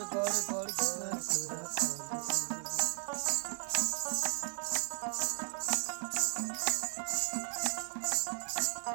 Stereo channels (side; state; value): left; silent; 54 dB below the other